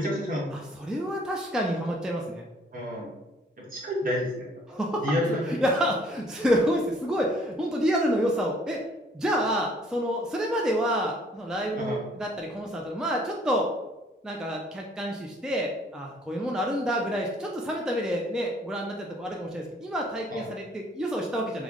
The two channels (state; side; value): normal; both; correlation 0.60